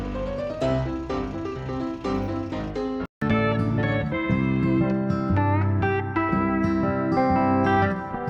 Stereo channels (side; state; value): both; identical; correlation 1.00